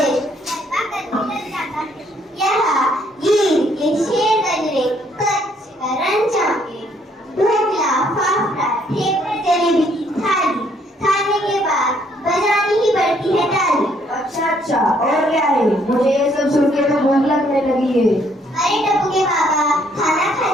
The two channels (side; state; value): both; normal; correlation 0.67